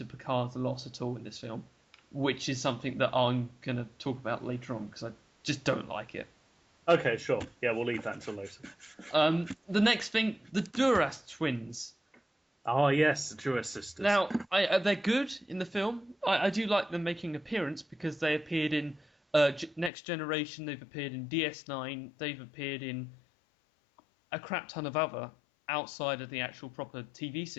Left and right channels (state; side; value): drops out; right; at 19.9 s